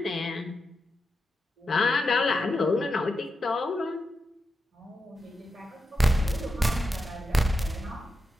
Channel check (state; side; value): normal; both; correlation 0.87